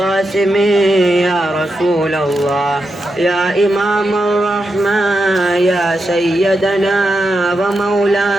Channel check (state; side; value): normal; both; correlation 0.87